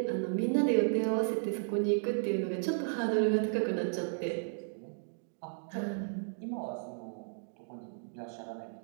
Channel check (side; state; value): left; silent; digital silence